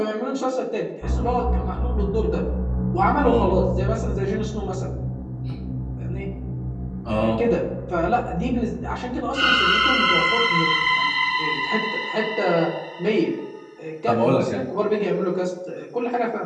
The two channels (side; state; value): both; identical; correlation 1.00